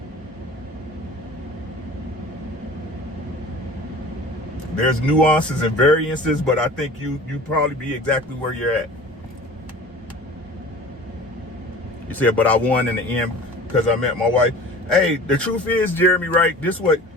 There's nuances and variances, but I think you probably be exactly where you're at. You said, but I won in the end because I met my wife. Hey, the truth is, Jeremy, right? This what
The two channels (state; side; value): normal; both; correlation 0.41